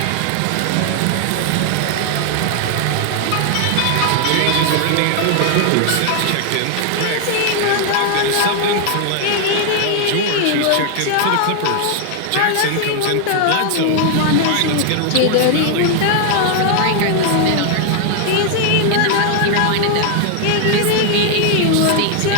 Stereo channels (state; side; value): different; both; correlation 0.00